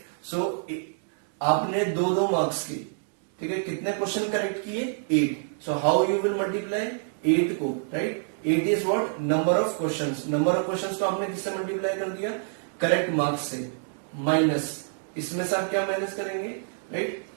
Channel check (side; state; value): left; silent; digital silence